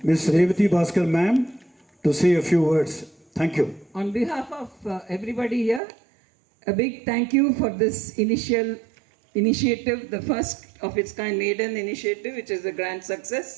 Revati Bhaskar ma'am to say a few words. Thank you. On behalf of everybody here, a big thank you for this initiative, the first of its kind maiden initiative, which is a grand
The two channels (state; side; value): drops out; left; at 5.8 s